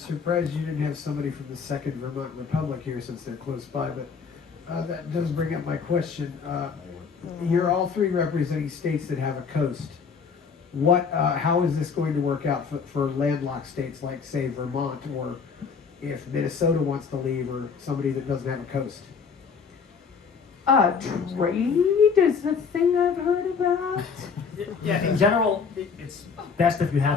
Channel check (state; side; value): quieter; right; 5.8 dB